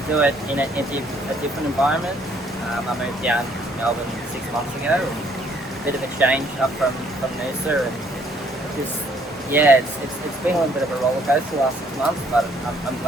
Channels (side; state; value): both; normal; correlation 0.64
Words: do it in a different environment. I moved down to Melbourne 6 months ago. A bit of a change up from Noose, and just it's been a little bit of a roller coaster the last 6 months, but I'm